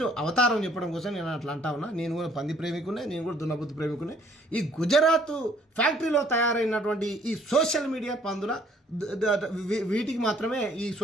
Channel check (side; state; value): both; normal; correlation 0.62